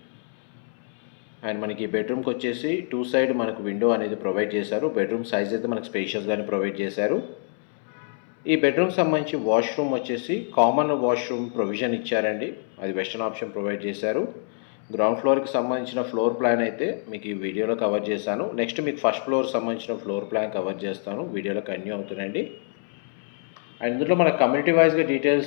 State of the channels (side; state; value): right; silent; 61 dB below the other